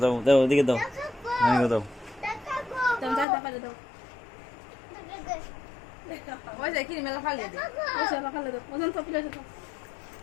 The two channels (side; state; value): right; drops out; at 3.2 s